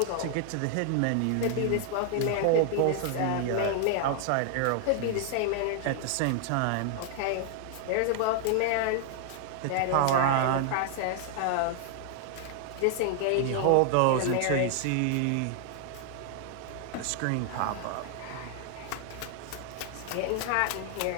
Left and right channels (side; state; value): both; different; correlation 0.00